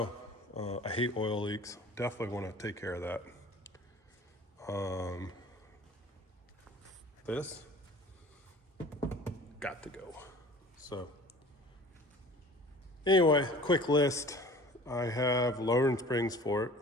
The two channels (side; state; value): both; normal; correlation 0.46